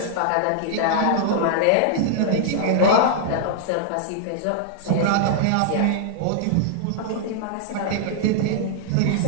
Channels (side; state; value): both; different; correlation -0.01